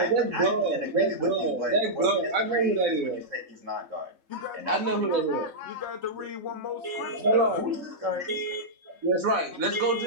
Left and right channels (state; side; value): late; left; 4.1 ms